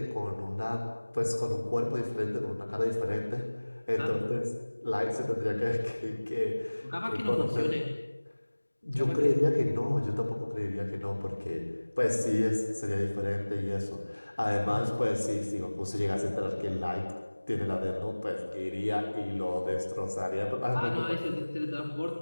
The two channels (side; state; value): both; inverted; correlation -1.00